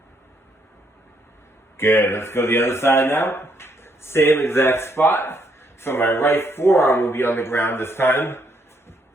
Good, let's go to the other side now. Same exact spot. So my right forearm will be on the ground this time.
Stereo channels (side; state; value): both; normal; correlation 0.73